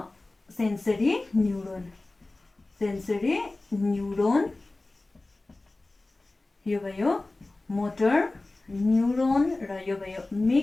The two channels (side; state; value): right; quieter; 3.0 dB